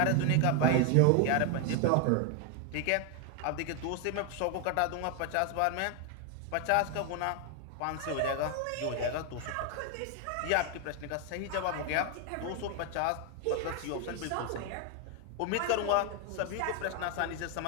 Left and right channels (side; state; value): both; different; correlation 0.01